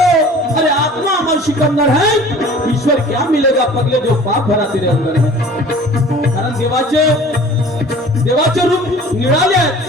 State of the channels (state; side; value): normal; both; correlation 0.45